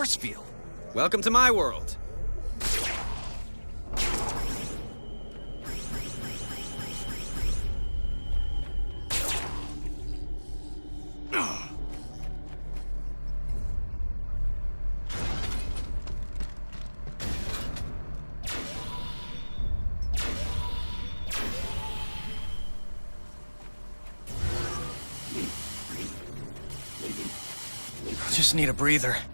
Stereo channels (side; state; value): both; inverted; correlation -1.00